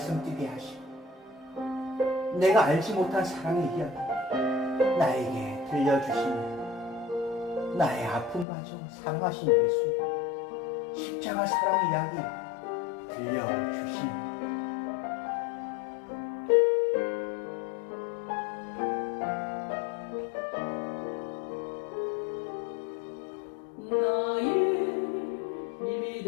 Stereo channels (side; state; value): right; drops out; at 8.5 s